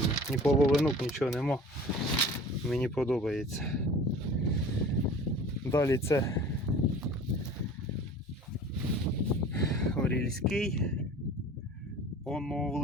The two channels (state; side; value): normal; both; correlation 0.43